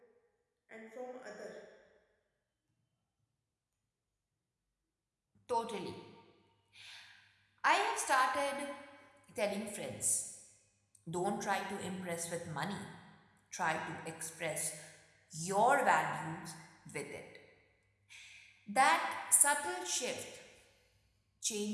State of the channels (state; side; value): identical; both; correlation 1.00